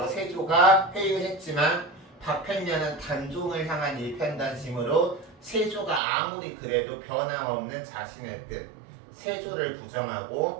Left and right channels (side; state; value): left; drops out; at 6.0 s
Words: 세조가 회유했지만 박팽년은 단종을 향한 일편단심으로 세조가 아무리 그래도 변함없는 자신의 뜻 세조를